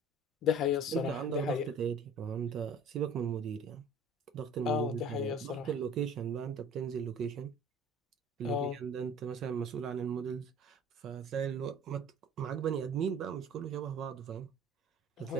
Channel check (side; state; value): both; normal; correlation 0.46